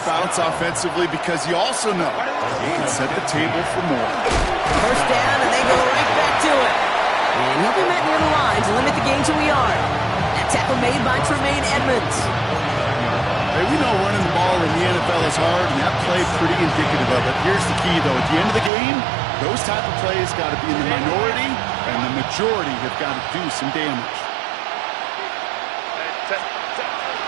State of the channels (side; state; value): left; drops out; at 18.7 s